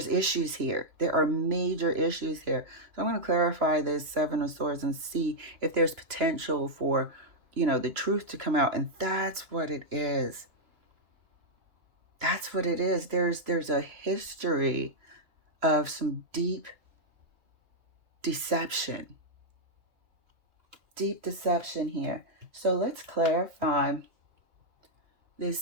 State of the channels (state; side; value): late; left; 3.0 ms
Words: issues here. There are major issues here. So I'm going to clarify this 7 of Swords and see if there's potential for, you know, the truth to come out. And that's what it is. That's what it is. There's a history of some deep deception. Deep deception here. So let's clarify